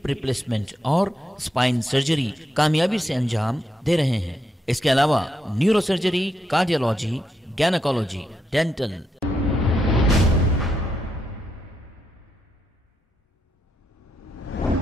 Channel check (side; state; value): both; normal; correlation 0.82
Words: replacement और spine surgery कामयाबी से अंजाम दे रहे हैं। इसके अलावा neuro surgery, cardiology, gynaecology, dental.